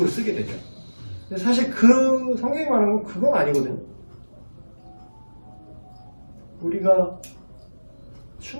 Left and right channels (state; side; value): inverted; both; correlation -1.00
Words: 쓰게 되죠. 근데 사실 그 성경이 말하는 건 그건 아니거든요. 우리가